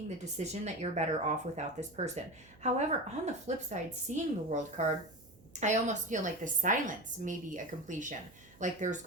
the decision that you're better off without this person. However, on the flip side, seeing the World card, I almost feel like the silence may be a completion. Like there's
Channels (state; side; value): noise; right; hum, 25 dB below the sound